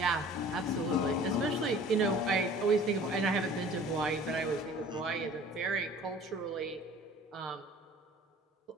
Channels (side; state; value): both; normal; correlation 0.48